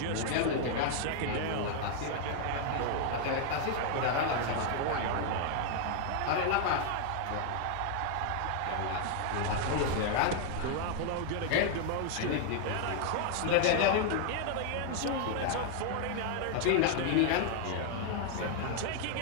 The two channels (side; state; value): both; different; correlation 0.00